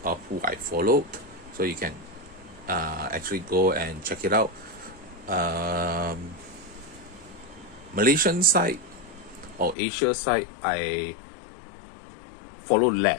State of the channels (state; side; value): drops out; right; at 9.8 s